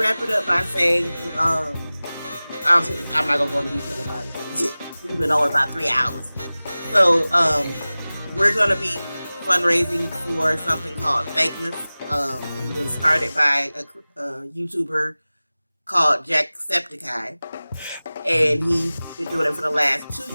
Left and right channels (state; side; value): inverted; both; correlation -0.98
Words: it up by saying, I'm not gonna go into detail about it because we've been on about 3 hours. So we're gonna be fundraising for something called Fakeness. It was started by a YouTuber called Jacksepticeye, and he's been doing it for the last 2